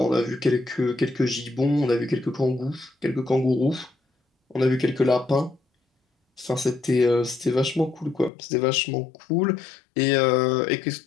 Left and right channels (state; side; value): drops out; right; at 8.3 s